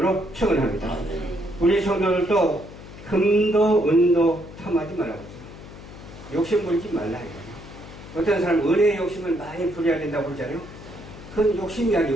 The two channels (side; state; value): left; noise; hum, 16 dB below the sound